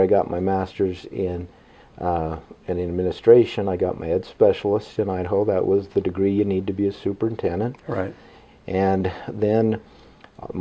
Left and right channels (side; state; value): both; identical; correlation 1.00